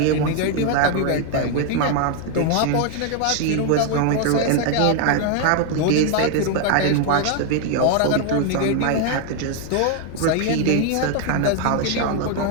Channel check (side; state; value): both; different; correlation 0.00